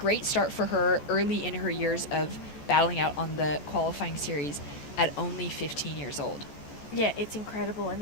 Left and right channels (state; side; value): late; right; 14 ms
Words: start for her early in her years of battling out on the qualifying series at only 15 years old. Yeah, it's incredible. And